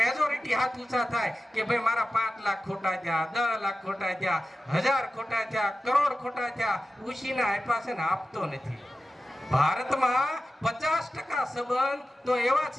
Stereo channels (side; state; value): both; normal; correlation 0.94